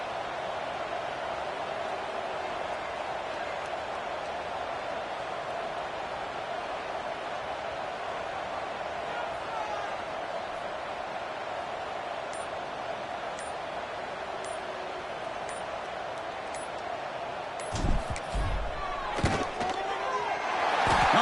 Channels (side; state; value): both; identical; correlation 1.00